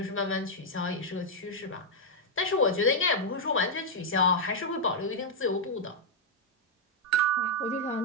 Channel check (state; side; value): normal; both; correlation -0.03